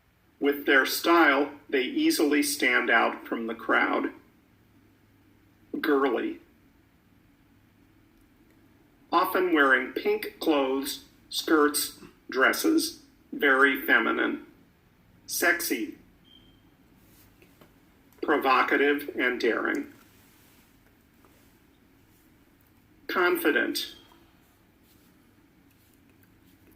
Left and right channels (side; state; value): both; identical; correlation 1.00